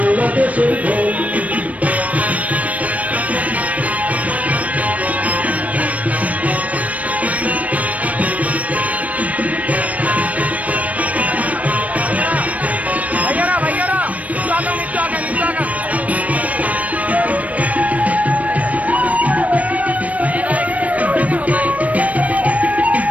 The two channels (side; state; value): left; late; 0.069 ms